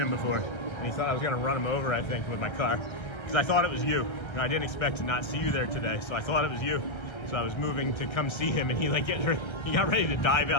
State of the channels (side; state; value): right; late; 1.3 ms